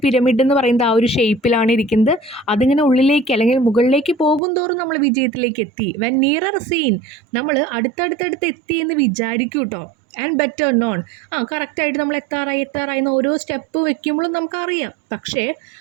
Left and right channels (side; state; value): left; drops out; at 4.4 s